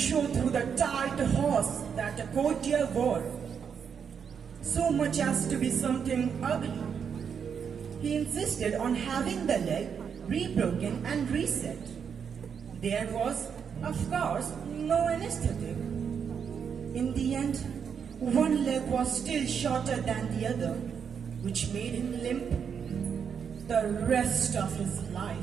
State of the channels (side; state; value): left; quieter; 7.0 dB